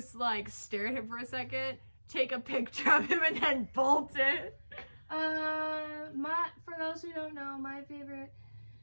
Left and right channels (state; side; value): inverted; both; correlation -1.00